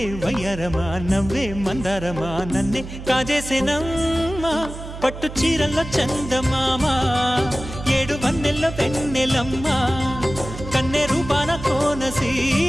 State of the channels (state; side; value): noise; right; hum, 11 dB below the sound